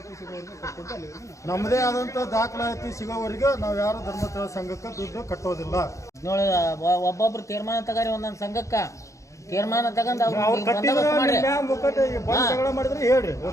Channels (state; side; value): late; right; 0.15 ms